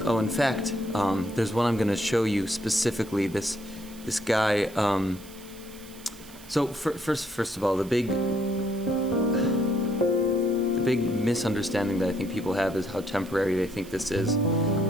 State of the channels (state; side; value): noise; right; hiss, 20 dB below the sound